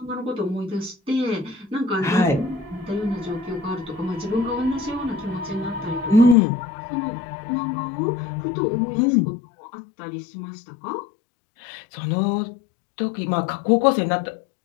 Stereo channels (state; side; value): drops out; right; at 6.4 s